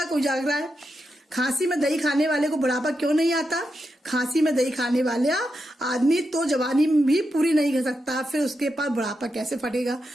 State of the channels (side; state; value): both; normal; correlation 0.86